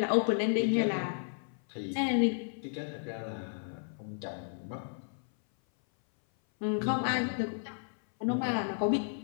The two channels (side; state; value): right; silent; 56 dB below the other